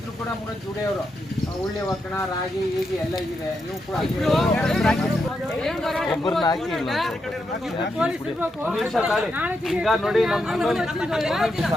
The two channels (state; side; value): normal; both; correlation 0.83